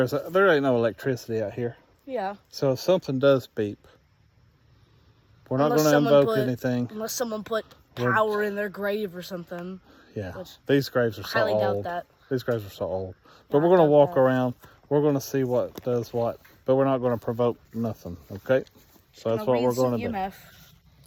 ain't no electricity out here. Yeah. So if something does beep, we're not going to invoke anything. Unless someone put power in their grave or something. Yeah, these graves are so old. I highly doubt that. These graves are so old. But we're going to walk around. We're going to see what does what. But we're not going to provoke nothing, okay? So that's what we're going to do.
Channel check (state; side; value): identical; both; correlation 1.00